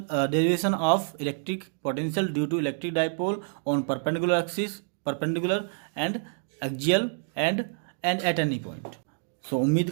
derivation of electric potential due to electric dipole on perpendicular axis, perpendicular and axial and at any point. सो उम्मीद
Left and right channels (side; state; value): left; silent; digital silence